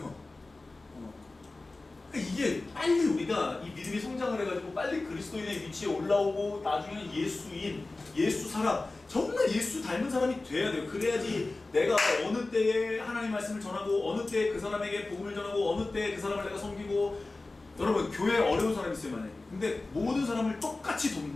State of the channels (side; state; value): right; quieter; 3.2 dB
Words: 이게 빨리 우리가 이 믿음이 성장을 해가지고 빨리 그리스도인의 위치에 올라오고 나중에는 예수인, 예수 사람, 정말 예수 닮은 사람이 돼야 돼요. 그래야지 내가 어느 때에 하나님 말씀을 전하고 어느 때에 그 사람에게 복음을 전하고 어느 때에 그 사람을 내가 섬기고. 여러분, 교회에 어려운 사람이 있어요, 만약에. 근데 모든 사람을 똑같이